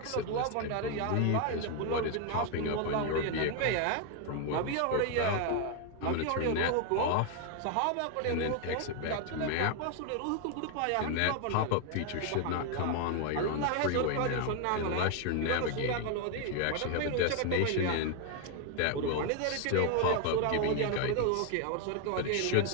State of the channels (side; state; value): both; different; correlation 0.01